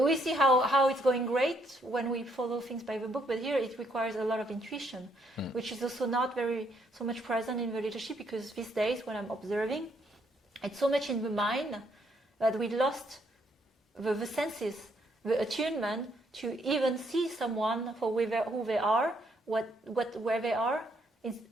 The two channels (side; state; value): both; normal; correlation 0.72